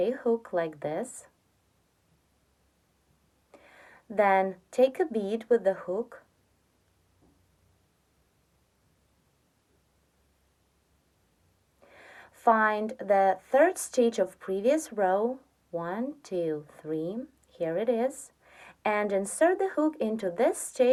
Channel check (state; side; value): identical; both; correlation 1.00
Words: hook like this. Then take a bead with the hook. Find the third stitch of previous row, 1, 2, 3, here it is, and insert the hook into this